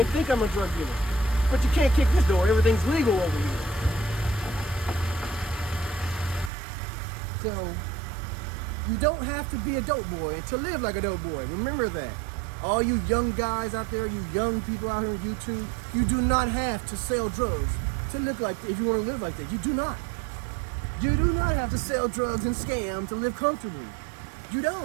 think I'm a drug dealer. But you can't kick this door. Everything's legal over here. So you don't have to be a dope boy to live like a dope boy. Remember that. All you young guys out there, you young people out here on YouTube, you do not have to sell drugs to look like that if you want to live like that. You do not. You do not have to sell drugs and scam to live comfortably. You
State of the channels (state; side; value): drops out; left; at 6.5 s